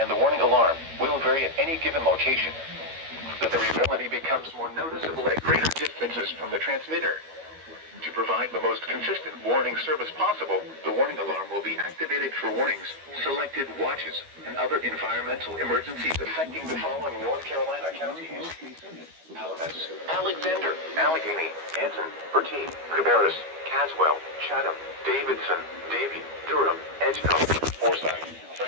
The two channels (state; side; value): late; left; 12 ms